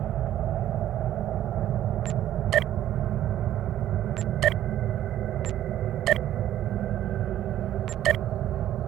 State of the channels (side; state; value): left; quieter; 12.2 dB